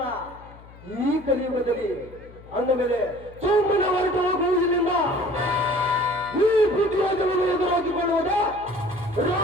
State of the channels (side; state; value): left; noise; hum, 21 dB below the sound